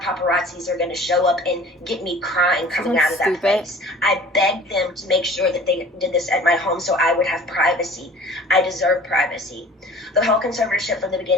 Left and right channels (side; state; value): both; normal; correlation 0.46